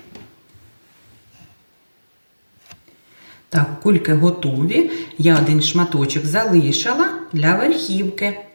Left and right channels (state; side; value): inverted; both; correlation -1.00